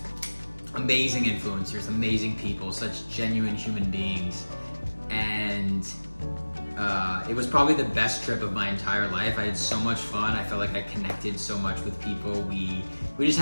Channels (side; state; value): both; inverted; correlation -1.00